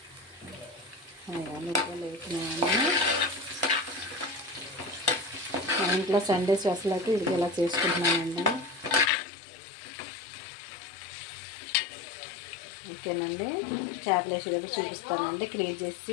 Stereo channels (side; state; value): right; drops out; at 9.1 s